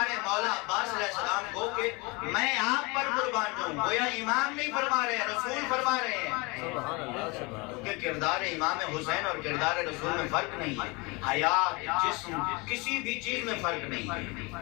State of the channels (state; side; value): quieter; right; 27.3 dB